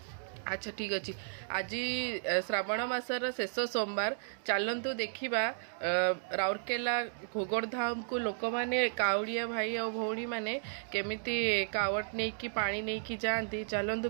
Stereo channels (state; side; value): silent; left; digital silence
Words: अच्छा ठीक अच्छे आज श्रावण मासर शेष सोमवार चलतु देखा राउरकेला घोगड़धाम को लोक मैंने काउड़िया भाई और भौणी मैंने केमिति कावट नहीं कि पानी नहीं कि जाती चलतु